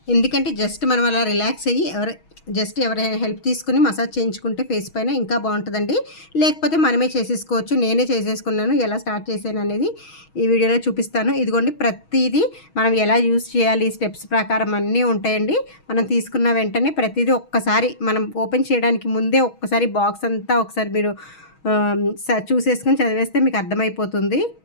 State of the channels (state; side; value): late; right; 6.3 ms